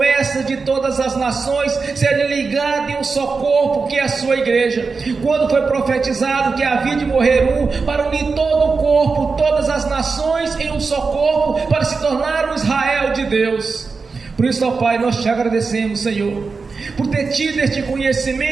de todas as nações serem ligadas em um só corpo, que é a Sua igreja, quando foi profetizado que havia de morrer um para unir todo o corpo, todas as nações em um só corpo, para se tornar o Israel de Deus. Por isso, ó Pai, nós Te agradecemos, Senhor, por ter tido este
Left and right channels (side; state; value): left; quieter; 4.6 dB